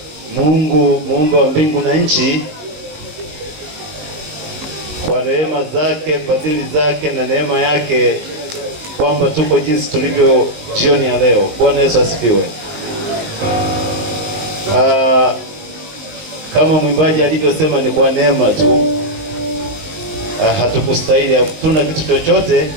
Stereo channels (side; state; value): left; late; 20 ms